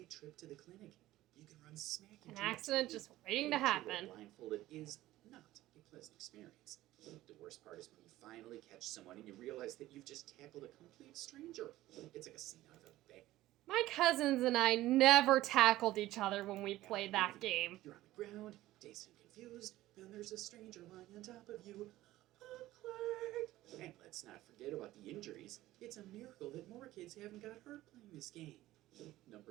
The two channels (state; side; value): quieter; left; 15.9 dB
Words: trip to the clinic. You can run smack into An accident just waiting to happen. Blindfolded is not a pleasant experience. The worst part is when you finally catch someone and you realize that you've just tackled a complete stranger. It's like a scene out of a My cousins and I never tackled each other when we played that game. You're on the ground, dazed and confused, and there's a stranger lying on top of you. Awkward! And let's not forget about the injuries. It's a miracle that more kids haven't got hurt playing this game.